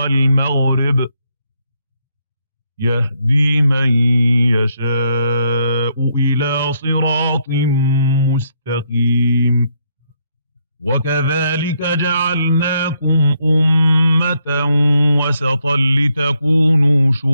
يهدي من يشاء إلى صراط مستقيم. وكذلك جعلناكم أمة وسطا لتكونوا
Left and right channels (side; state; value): both; inverted; correlation -0.75